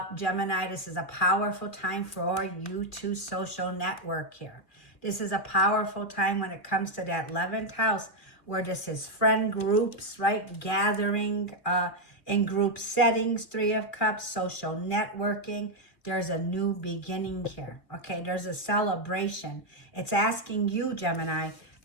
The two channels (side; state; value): right; late; 2.4 ms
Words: Gemini, this is a powerful time for you to social network here. This is a powerful time when it comes to that 11th house, where this is friend groups, right? Gathering in group settings, Three of Cups, social networking. There's a new beginning here, okay? There's a celebration. It's asking you, Gemini,